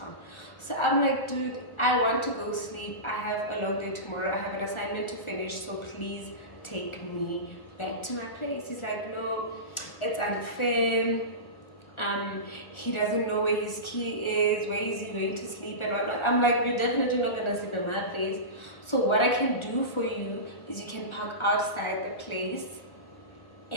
So I'm like, dude, I want to go sleep. I have a long day tomorrow. I have an assignment to finish. So please take me back to my place. He's like, no, it's unfair. He doesn't know where his key is. Where is he going to sleep and whatnot? I'm like, you're definitely not gonna sleep in my place. So what I can do for you is you can park outside the place,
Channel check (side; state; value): right; late; 1.4 ms